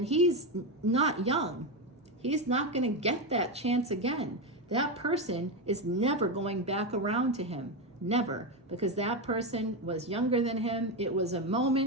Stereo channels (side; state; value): both; normal; correlation 0.11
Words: he's not young. He's not going to get that chance again. That person is never going back around to him. Never. Because that person was younger than him. It was a